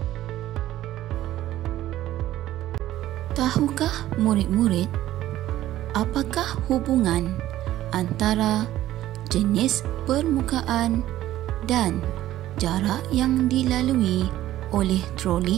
Tahukah murid-murid, apakah hubungan antara jenis permukaan dan jarak yang dilalui oleh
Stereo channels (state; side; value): quieter; left; 14.1 dB